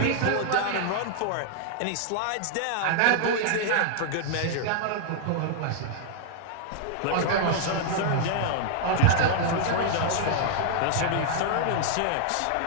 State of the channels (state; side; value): different; both; correlation 0.00